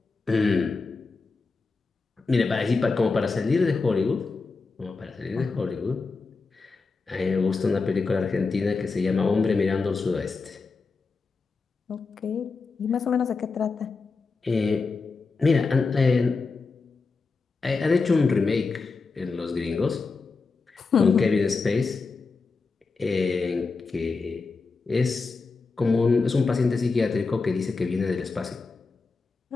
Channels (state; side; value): quieter; right; 4.3 dB